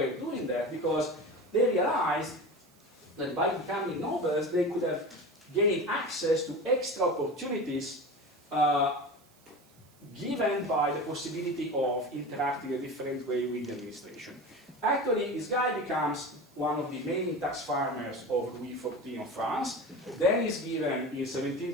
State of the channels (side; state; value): right; noise; hiss, 30 dB below the sound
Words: doing that? Because they realized that by becoming nobles, they could have gained access to extra opportunities given by the possibility of interacting a different way with the administration. Actually, this guy becomes one of the main tax farmers of Louis XIV of France. Then he's given in